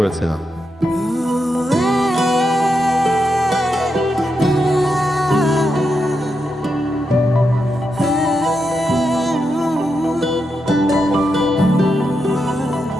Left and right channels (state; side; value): normal; both; correlation 0.85